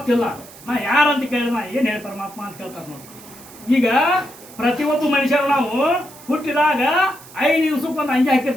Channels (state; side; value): noise; right; hiss, 20 dB below the sound